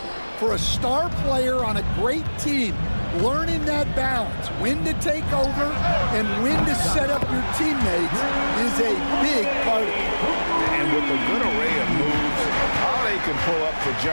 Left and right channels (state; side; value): inverted; both; correlation -1.00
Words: For a star player on a great team, learning that balance, when to take over and when to set up your teammates, is a big part of it. And with a good array of moves, Holiday can pull up for